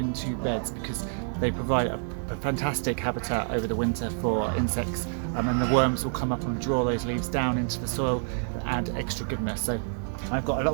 beds, because they provide a fantastic habitat over the winter for insects, and the worms will come up and draw those leaves down into the soil and add extra goodness. So I've got a lot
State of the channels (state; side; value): silent; left; 59 dB below the other